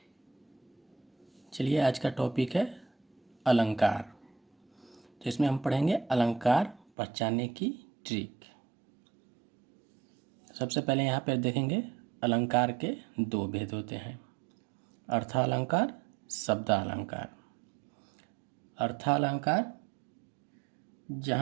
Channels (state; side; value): drops out; left; at 6.9 s